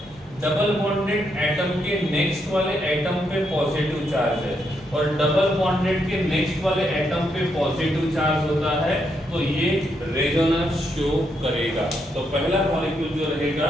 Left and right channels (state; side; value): normal; both; correlation 0.78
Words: डबल बॉन्डेड एटम के नेक्स्ट वाले एटम पे पॉजिटिव चार्ज है और डबल बॉन्डेड के नेक्स्ट वाले एटम पे पॉजिटिव चार्ज होता है, तो ये रेजोनेंस शो करेगा। तो पहला मॉलिक्यूल जो रहेगा